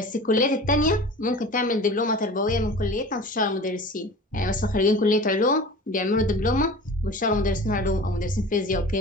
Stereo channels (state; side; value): normal; both; correlation 0.38